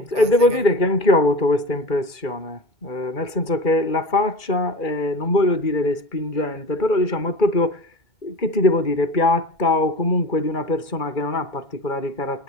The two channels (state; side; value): late; right; 2.4 ms